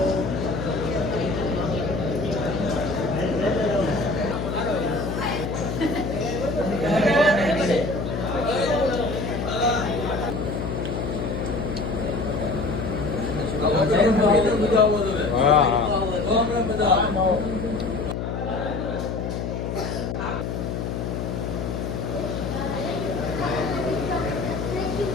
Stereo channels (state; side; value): noise; left; hum, 3 dB below the sound